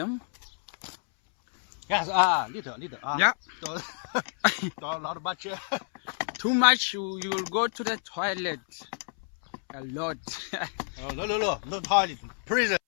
Yes. Little. Yeah. Not much. Too much, you will go to the toilet. A lot. No toilet. Prison.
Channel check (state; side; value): silent; right; 59 dB below the other